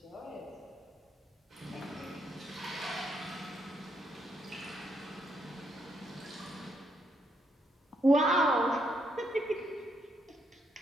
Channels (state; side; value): normal; both; correlation 0.76